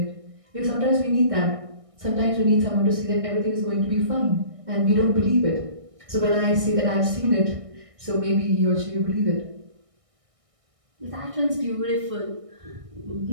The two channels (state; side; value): late; left; 1.6 ms